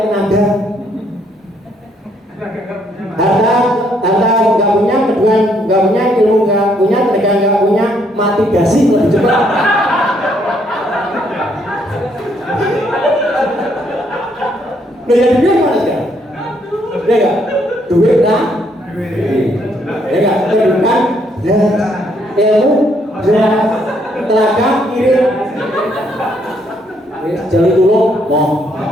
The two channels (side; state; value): both; normal; correlation 0.70